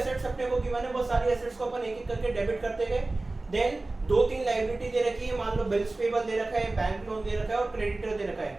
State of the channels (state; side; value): quieter; left; 3.1 dB